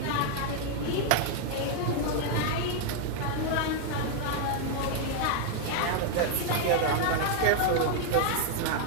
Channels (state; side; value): different; both; correlation 0.00